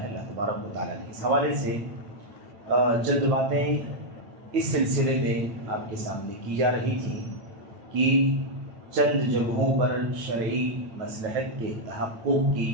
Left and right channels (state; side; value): late; left; 9.3 ms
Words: ہے اللہ تبارک و تعالیٰ نے. اس حوالے سے چند باتیں اس سلسلے میں آپ کے سامنے کی جا رہی تھیں کہ چند جگہوں پر شرعی مصلحت کے تحقق کی